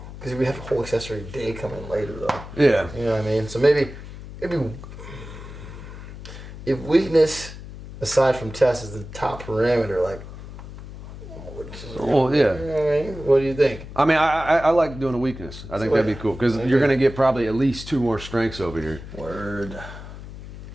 because we have a whole accessory day coming later, though. Yeah. You know what I mean? So maybe if weakness, aside from test, is the top parameter, like. Well, yeah. You know what I mean? What do you think? I mean, I like doing a weakness. I think that'd be cool because you're gonna get probably at least 2 more strengths over here. Word.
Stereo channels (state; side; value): noise; left; hum, 13 dB below the sound